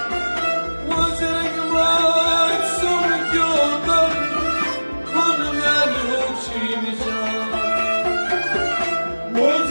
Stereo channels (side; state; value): both; inverted; correlation -1.00